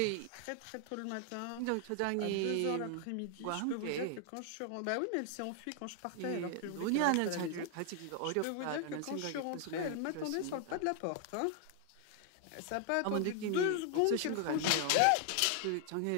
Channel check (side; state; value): both; different; correlation 0.00